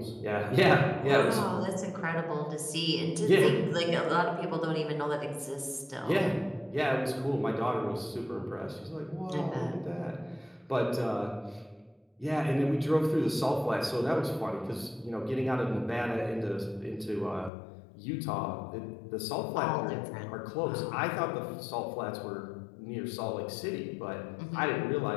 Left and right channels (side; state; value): right; drops out; at 17.5 s